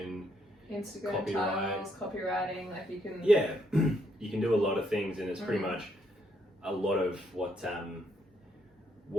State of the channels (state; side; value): normal; both; correlation 0.73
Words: Instagram titles, copywriting, like you can you can do a lot of things, and it's pretty much a lot of what